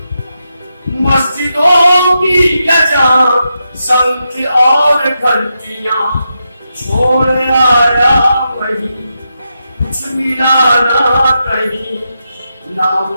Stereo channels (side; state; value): both; inverted; correlation -0.86